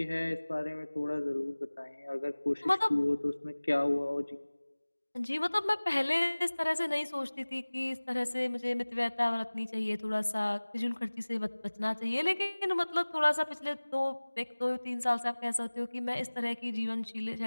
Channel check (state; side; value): inverted; both; correlation -1.00